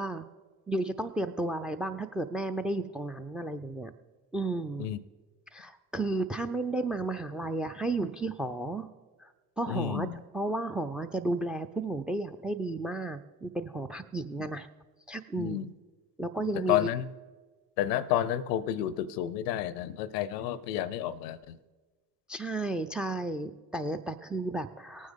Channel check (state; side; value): normal; both; correlation 0.46